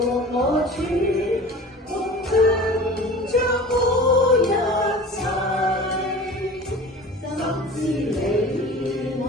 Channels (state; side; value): normal; both; correlation 0.39